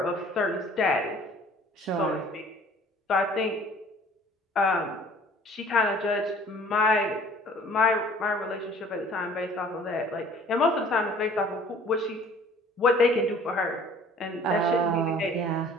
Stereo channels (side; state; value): both; normal; correlation 0.52